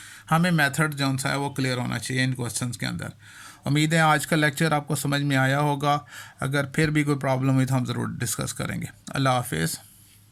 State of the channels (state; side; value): identical; both; correlation 1.00